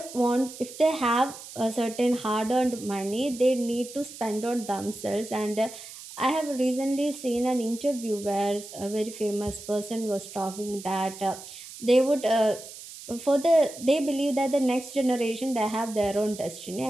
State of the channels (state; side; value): noise; right; hiss, 14 dB below the sound